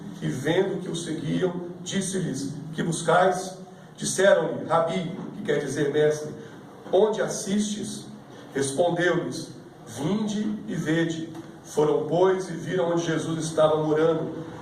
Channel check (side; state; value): both; identical; correlation 1.00